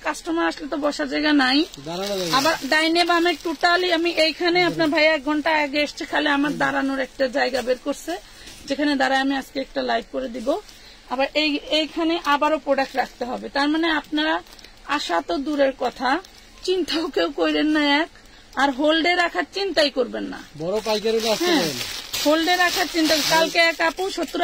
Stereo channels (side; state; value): both; identical; correlation 1.00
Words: কাস্টমার আসলে তো বসার জায়গা নাই, আবার ডাইনে বামে টোটালি আমি এইখানে আপনার ভাই 1 ঘন্টা আগে এসছে, খালি আমার দাঁড়ানোর একটা জায়গা বের করছে যেখানে দাঁড়ায় আমি আজকে একটা লাইভ করে দিব। আবার এইখানে আবারও প্রোডাক্ট রাখতে হবে, তার মানে আপনারা আসা তো দূরের কথা, চিন্তাও কেউ করেন না এক, আর হোল্ডে রাখার চিন্তাই করবেন না। বড় পাইকারি হোল্ডে রাখার চিন্তা। কালকে এক আপু